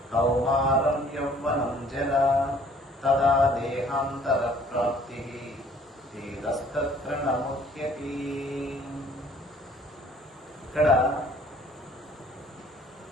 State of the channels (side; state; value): both; normal; correlation 0.56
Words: कौमारं यौवनं जरा तदा देहान्तरप्राप्तिः धीरस्तत्र न मुह्यति। ఇక్కడ